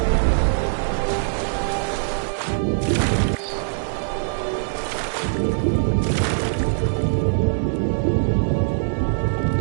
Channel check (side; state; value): left; silent; 64 dB below the other